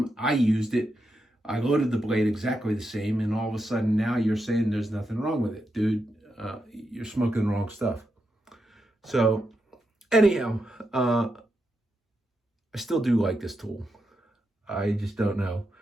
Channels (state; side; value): normal; both; correlation 0.85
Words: I used it. I loaded the blade exactly the same, and all of a sudden now you're saying there's nothing wrong with it. Dude, you're smoking the wrong stuff. So anyhow, I still do like this tool. I just don't know.